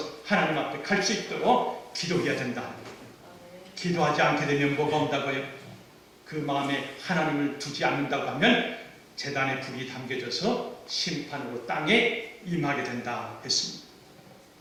하나님 앞에 갈 수 있도록 기도해야 된다. 기도하지 않게 되면 뭐가 온다고요? 그 마음에 하나님을 두지 않는다고 하면 제단에 불이 담겨져서 심판으로 땅에 임하게 된다 했습니다.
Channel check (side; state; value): both; identical; correlation 1.00